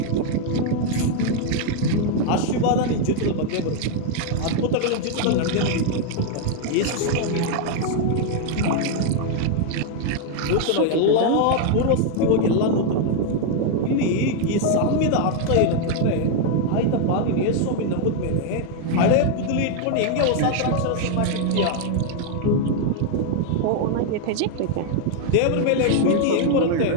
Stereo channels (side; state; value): both; different; correlation 0.00